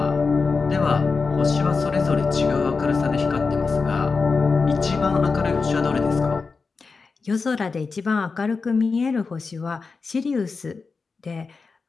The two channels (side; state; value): right; quieter; 4.5 dB